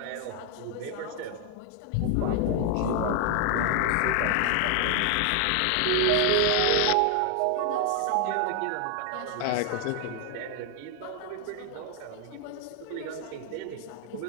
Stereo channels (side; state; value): both; different; correlation 0.00